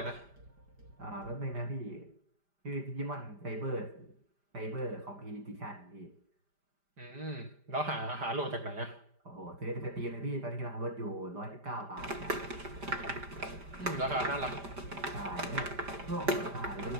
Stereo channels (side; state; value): left; late; 5.0 ms